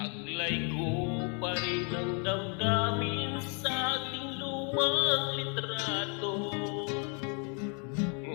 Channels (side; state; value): right; quieter; 38.0 dB